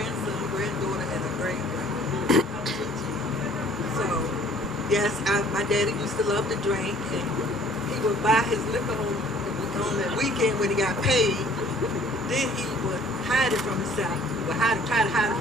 granddaughter, and a great-granddaughter. So, yes, my daddy used to love to drink, and he would buy his liquor on the weekend when he got paid. Then he would hide it from himself. He would try to hide it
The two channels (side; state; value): both; normal; correlation 0.55